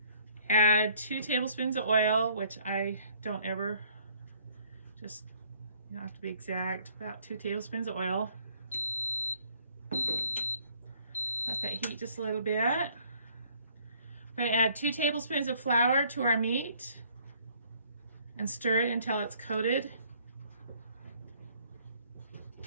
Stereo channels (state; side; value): inverted; both; correlation -0.60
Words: Add 2 tablespoons of oil, which I don't ever, just, you don't have to be exact, about 2 tablespoons of oil. Let that heat just a little bit. I'm going to add 2 tablespoons of flour to our meat and stir it until it's coated.